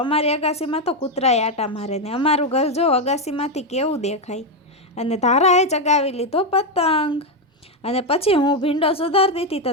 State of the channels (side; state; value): both; normal; correlation 0.06